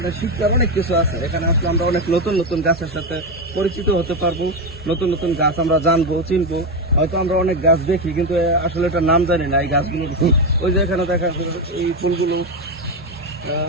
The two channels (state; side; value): normal; both; correlation 0.11